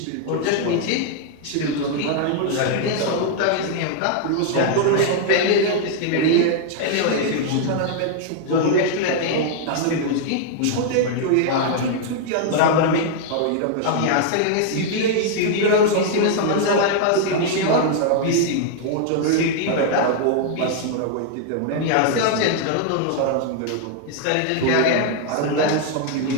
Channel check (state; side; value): different; both; correlation 0.00